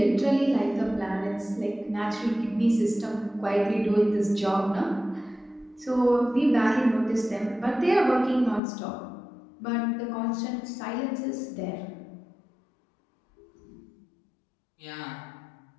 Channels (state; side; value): drops out; right; at 8.6 s